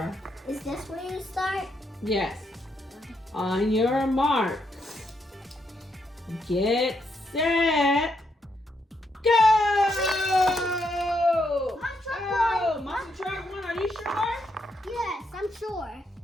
Is this where you start? Yes. On your mark. Get set. Go! Monster truck Oh, won. monster truck won. Are you sure? Yes, I'm sure.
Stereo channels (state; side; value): normal; both; correlation 0.78